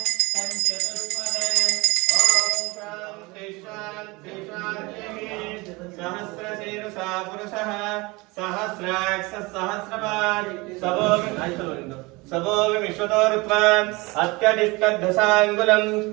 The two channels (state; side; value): quieter; left; 24.3 dB